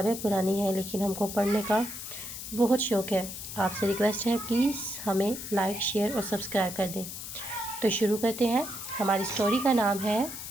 پرانی ہیں لیکن ہم کو پڑھنے کا بہت شوق ہے۔ آپ سے ریکویسٹ ہے پلیز ہمیں لائک، شیئر اور سبسکرائب کر دیں۔ تو شروع کرتے ہیں۔ ہماری سٹوری کا نام ہے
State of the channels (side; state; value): left; noise; hiss, 9 dB below the sound